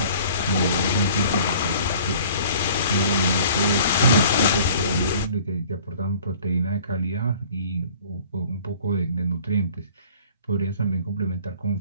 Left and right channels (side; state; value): both; inverted; correlation -0.50